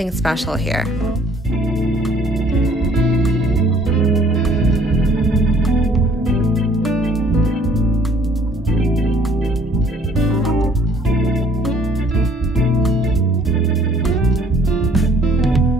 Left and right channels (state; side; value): normal; both; correlation 0.59